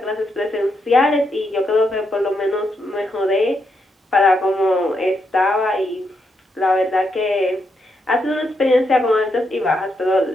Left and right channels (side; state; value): both; normal; correlation 0.80